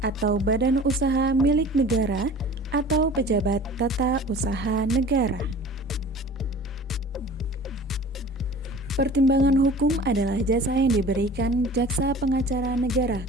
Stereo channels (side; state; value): both; normal; correlation 0.43